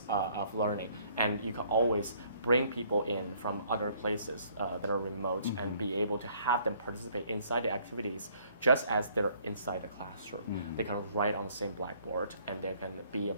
of learning. And you can always bring people in from other places that are remote and be able to have them participate inside the activities just as they're inside the classroom. They can write on the same blackboard and they can be a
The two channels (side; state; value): both; inverted; correlation -0.62